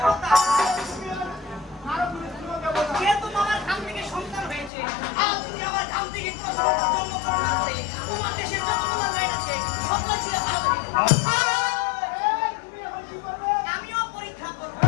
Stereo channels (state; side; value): drops out; right; at 4.7 s